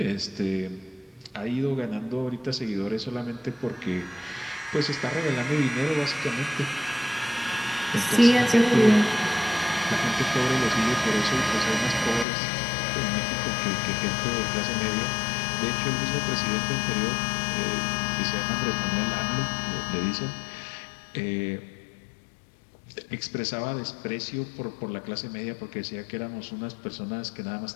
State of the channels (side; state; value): right; drops out; at 12.2 s